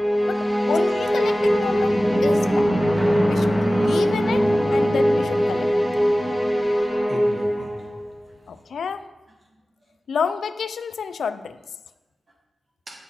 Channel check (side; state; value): both; normal; correlation 0.96